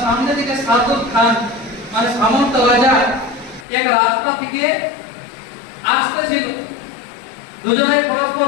সামনে দিকে সাদুল খান মানে সামন্ত রাজা এক রাস্তা থেকে আসতেছিল। দুজনেই পরস্পর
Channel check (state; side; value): drops out; right; at 3.7 s